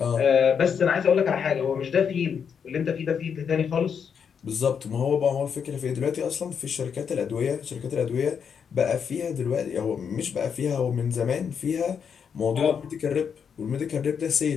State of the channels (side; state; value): right; quieter; 7.0 dB